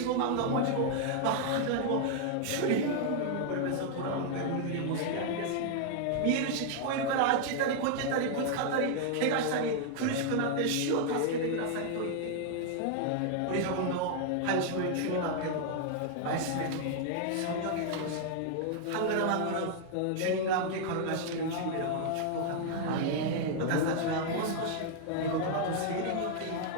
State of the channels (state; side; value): different; both; correlation 0.00